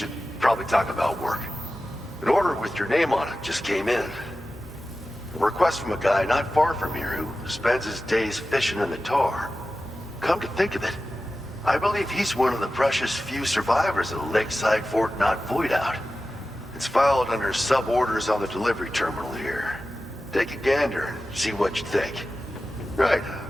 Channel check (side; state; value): both; normal; correlation 0.94